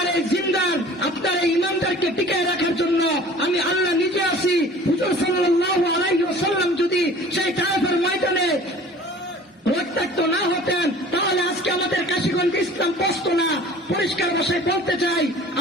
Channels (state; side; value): normal; both; correlation 0.46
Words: এই জিন্দার, আপনার এই ইমানদারকে টিকায় রাখার জন্য আমি আল্লাহ নিজে আছি। হুজুর সাল্লাল্লাহু আলাইহি ওয়াসাল্লাম যদি সেই তায়েফের ময়দানে রক্তাক্ত না হতেন তাহলে আজকে আমাদের কাশীগঞ্জ ইসলাম বসতো না। পরিষ্কার ভাষায় বলতে চাই,